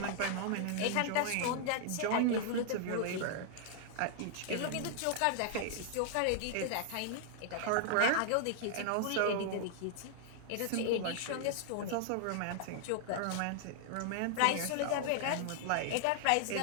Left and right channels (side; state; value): both; different; correlation -0.01